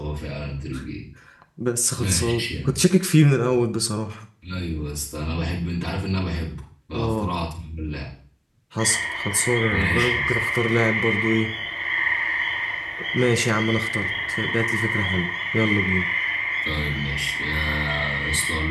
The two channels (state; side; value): identical; both; correlation 1.00